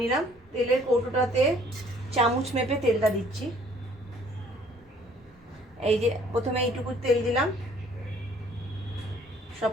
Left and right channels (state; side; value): noise; right; rumble, 28 dB below the sound